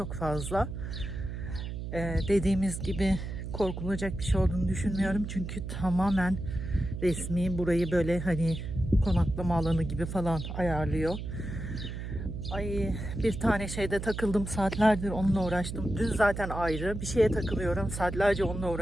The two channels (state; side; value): noise; right; hum, 6 dB below the sound